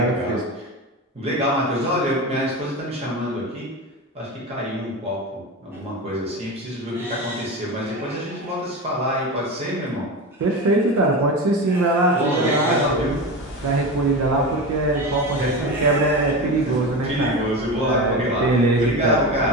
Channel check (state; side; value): normal; both; correlation 0.24